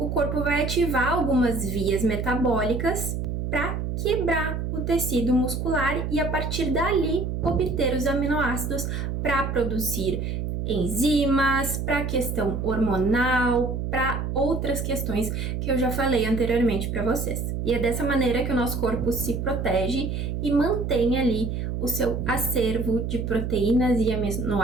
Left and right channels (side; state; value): right; noise; hum, 3 dB below the sound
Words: corpo vai ativar algumas vias metabólicas para quebrar o tecido muscular e a partir dali obter os aminoácidos para produzir enzimas, para a questão hormonal, para outras questões que eu já falei anteriormente para vocês. E é dessa maneira que o nosso corpo se protege e mantém ali o seu acervo de proteínas e